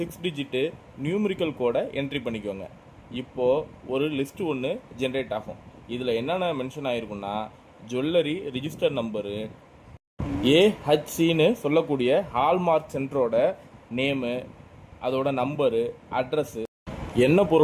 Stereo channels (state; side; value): identical; both; correlation 1.00